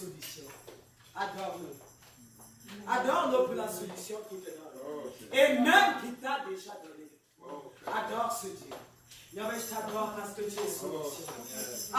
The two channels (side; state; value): both; identical; correlation 1.00